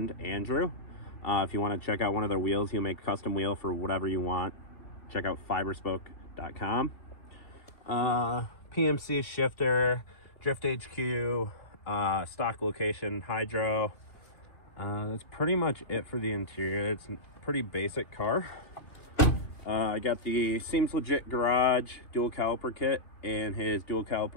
Andrew. If you want to check out one of their wheels, he'll make custom wheel for whatever you want. Check out fiberspoke.com. PMC shifter, drift HQ, stock location, hydro. That's pretty much it for the interior. It's a pretty basic car. I got the Seems Legit Garage dual caliper kit and his dual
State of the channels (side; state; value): right; late; 3.2 ms